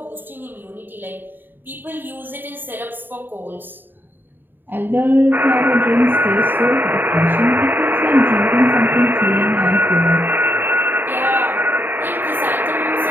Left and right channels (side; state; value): left; late; 0.093 ms